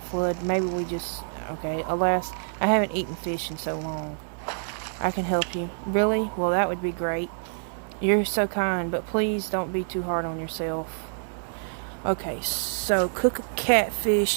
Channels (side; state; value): left; silent; digital silence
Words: Maybe we just... Okay, alas, I haven't eaten fish in so long. I can help you. Really? Well, that would be great. You're so kind, but please don't be too hard on yourself. Okay, so cook a